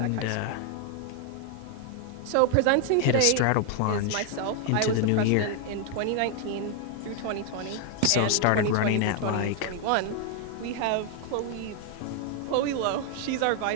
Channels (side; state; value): both; different; correlation 0.00